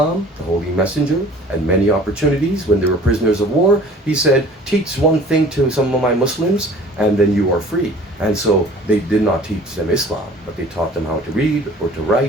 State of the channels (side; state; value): both; normal; correlation 0.48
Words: the Holy Messenger, at many opportunities when they were prisoners of war, he said, teach one thing to some of my Muslims and then you are free. And so they did not teach them Islam, but they taught them how to read or to